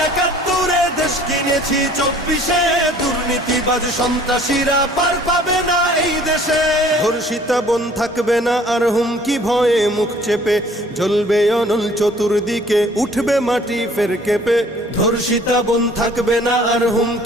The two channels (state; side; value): normal; both; correlation 0.54